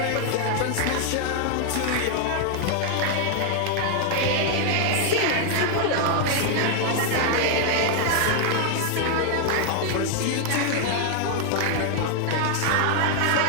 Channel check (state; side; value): different; both; correlation 0.00